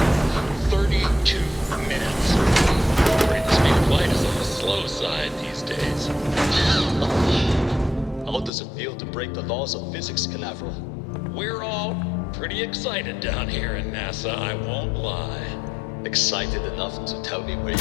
32 minutes. Rate speed of light is on the slow side these days. How does it feel to break the laws of physics, Canaveral? We're all pretty excited down here in NASA, I won't lie. Excited enough to tell me where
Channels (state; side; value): drops out; right; at 8.5 s